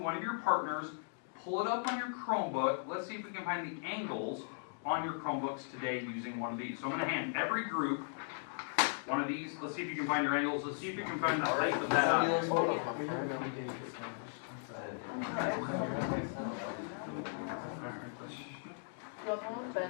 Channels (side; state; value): right; silent; digital silence